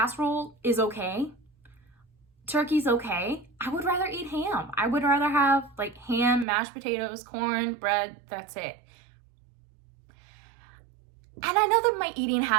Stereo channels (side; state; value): left; drops out; at 6.5 s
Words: is okay. Turkey's okay. I would rather eat ham. I would rather have like ham, mashed potatoes, corn, bread, that's it. And I know that my eating